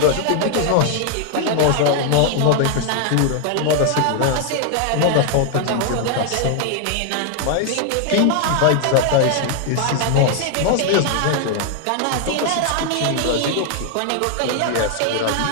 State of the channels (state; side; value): different; both; correlation 0.00